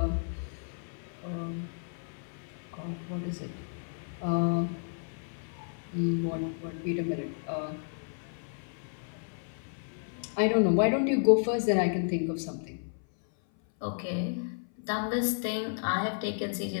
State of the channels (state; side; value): silent; right; 56 dB below the other